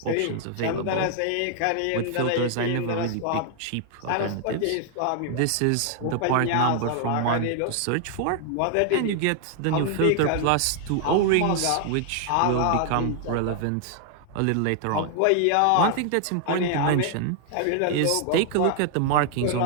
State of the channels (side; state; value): both; different; correlation 0.00